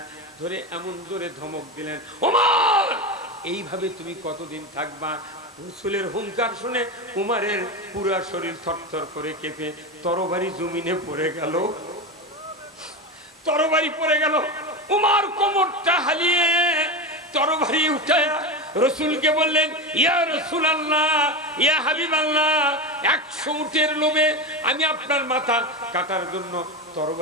ধরে এমন জোরে ধমক দিলেন, উমার এইভাবে তুমি কতদিন থাকবা? রসুলের হুঙ্কার শুনে উমারের পুরা শরীর থরথর করে কেঁপে তরবারি জমিনে পড়ে গেল, তরবারি পড়ে গেল। উমার কোমরটা হালিয়ে তরবারি উঠায়া রসুলকে বললেন, ইয়া রাসূলুল্লাহ, ইয়া হাবিবাল্লাহ, 100 উটের লোভে আমি আপনার মাথা কাটার জন্য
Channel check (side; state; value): both; normal; correlation 0.19